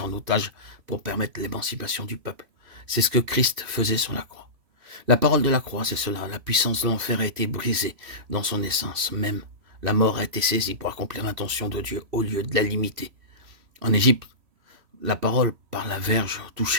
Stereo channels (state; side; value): late; left; 3.1 ms